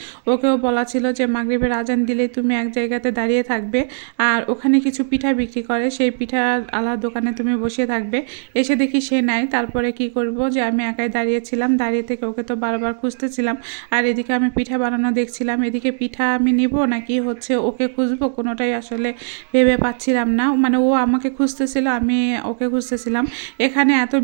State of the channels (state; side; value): silent; left; digital silence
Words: ওকেও বলা ছিল যে মাগরিবের আজান দিলে তুমি এক জায়গাতে দাঁড়িয়ে থাকবে, আর ওখানে কিছু পিঠা বিক্রি করে, সেই পিঠা আলার দোকানে তুমি বসে থাকবে। এসে দেখি সে নাই, তারপরে কি করব যে আমি একাই দাঁড়িয়েছিলাম। দাঁড়িয়ে থেকে ওকে তো বারবার খুঁজতেছিলাম, আর এদিকে আমি পিঠা বানানো দেখছিলাম। এদিকে পিঠা আমি নিব নাকি হচ্ছে ওকে খুঁজবো, কোনোটাই আসলে ভেবে পাচ্ছিলাম না। মানে ও আমাকে খুঁজতেছিল, আমি ওকে খুঁজতেছিলাম। এখানে এত